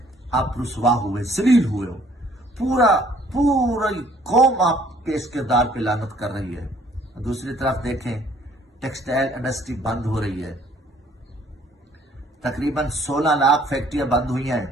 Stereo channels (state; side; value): normal; both; correlation 0.60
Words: آپ رسوا ہوئے، ذلیل ہوئے ہو، پوری قوم آپ کے اس کردار پہ لعنت کر رہی ہے۔ دوسری طرف دیکھیں، ٹیکسٹائل انڈسٹری بند ہو رہی ہے، تقریباً 16 لاکھ فیکٹریاں بند ہوئی ہیں،